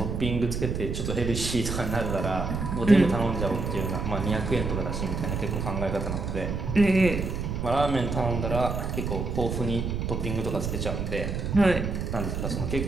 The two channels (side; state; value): right; noise; rumble, 3 dB below the sound